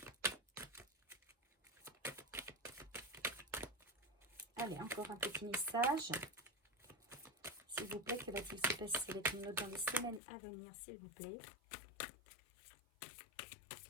Allez, encore un petit message. S'il vous plaît, que va-t-il se passer avec une autre dans les semaines à venir, s'il vous plaît?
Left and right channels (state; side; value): drops out; right; at 10.2 s